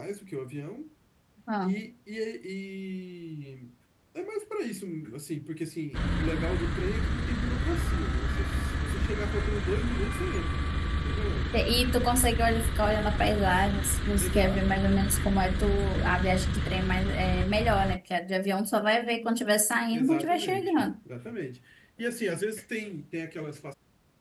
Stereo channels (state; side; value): identical; both; correlation 1.00